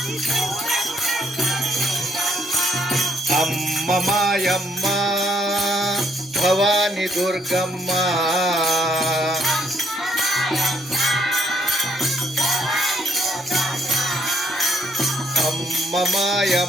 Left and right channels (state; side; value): normal; both; correlation 0.70